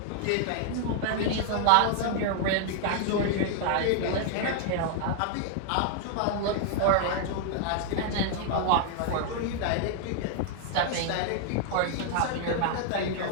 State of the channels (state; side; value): different; both; correlation 0.00